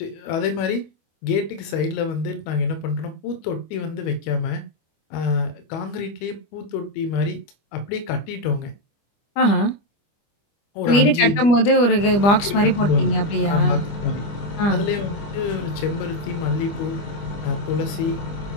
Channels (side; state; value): right; late; 25 ms